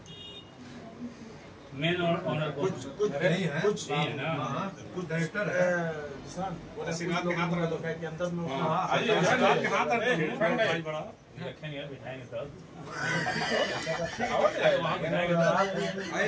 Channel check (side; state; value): both; identical; correlation 1.00